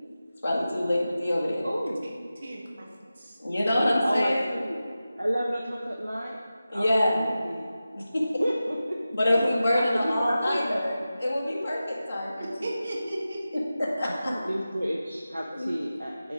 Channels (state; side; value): inverted; both; correlation -0.94